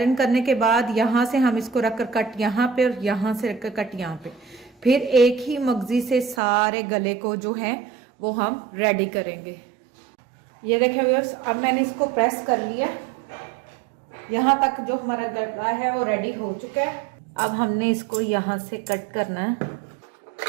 करने के बाद यहाँ से हम इसको रखकर कट यहाँ पे और यहाँ से रखकर कट यहाँ पे, फिर एक ही मगजी से सारे गले को जो है वो हम रेडी करेंगे। ये देखिए व्यूअर्स, अब मैंने इसको प्रेस कर लिया, यहाँ तक जो हमारा गला है वो रेडी हो चुका है। अब हमने इसको यहाँ से कट करना है।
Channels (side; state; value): left; drops out; at 6.4 s